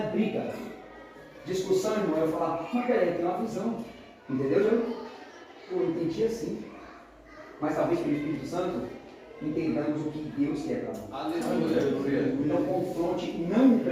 briga. Discussão, irmão, é eu falar, mas peraí, tem uma visão. Entendeu, João? Eu entendi assim. Mas talvez pelo Espírito Santo entendamos o que Deus quer para nós. Não confronte, não o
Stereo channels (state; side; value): identical; both; correlation 1.00